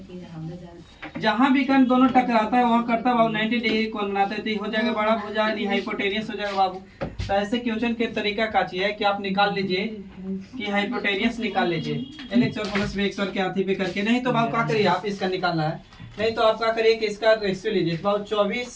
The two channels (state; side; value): identical; both; correlation 1.00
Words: जहां विकर्ण दोनों टकराता है वहां करता बाबू 90 डिग्री कोण बनाता है, तो ये हो जाएगा बड़ा भुजा यानी हाइपोटेनियस हो जाएगा बाबू। तो ऐसे क्वेश्चन के तरीका का चाहिए कि आप निकाल लीजिए कि हाइपोटेनियस निकाल लीजिए, LX और प्लस BX और के हाथी पे करके, नहीं तो बाबू क्या करिए आप इसका निकालना है, नहीं तो आप क्या करिए कि इसका रेशियो लीजिए बाबू,